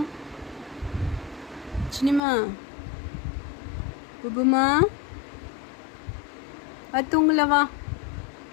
சின்னம்மா, புபுமா, தூங்கல வா.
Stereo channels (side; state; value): right; drops out; at 2.2 s